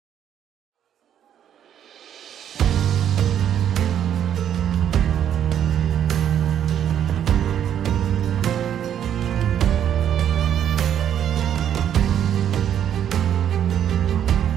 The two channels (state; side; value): quieter; left; 9.8 dB